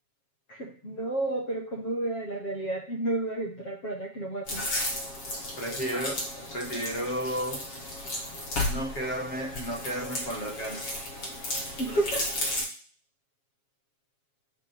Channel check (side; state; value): right; late; 7.3 ms